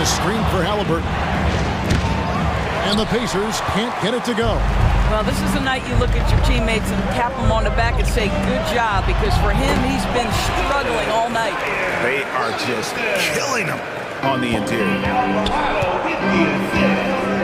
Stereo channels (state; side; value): identical; both; correlation 1.00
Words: screen for Halliburton. And the Pacers can't get it to go. Well, this is the night you look at your teammates and tap them on the back and say, good job, because for him, he's been struggling all night. They are just killing him on the interior.